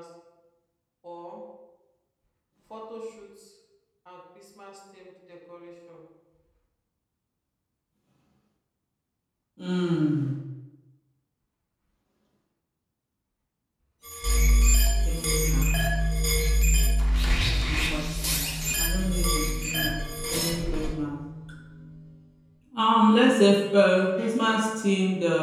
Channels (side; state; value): both; identical; correlation 1.00